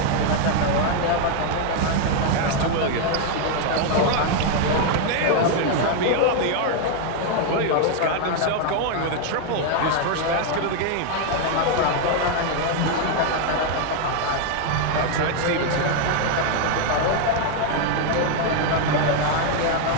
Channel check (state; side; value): different; both; correlation 0.01